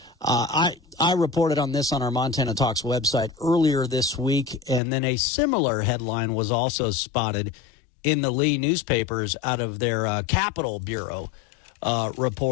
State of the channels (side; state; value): right; drops out; at 4.8 s